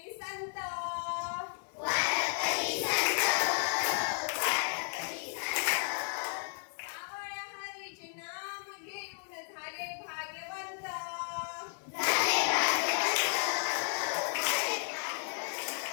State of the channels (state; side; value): silent; right; digital silence